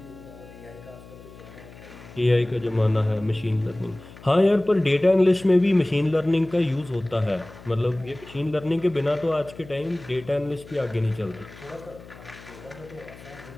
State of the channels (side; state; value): left; noise; hum, 19 dB below the sound